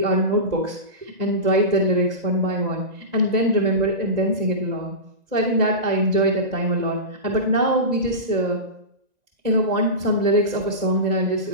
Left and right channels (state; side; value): late; left; 1.9 ms